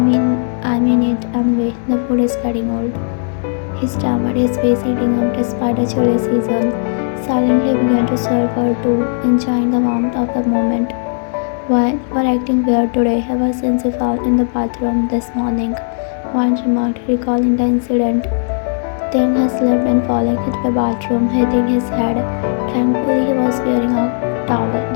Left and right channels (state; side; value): silent; right; digital silence